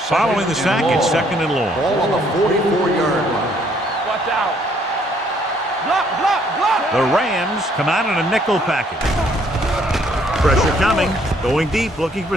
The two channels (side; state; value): both; normal; correlation 0.65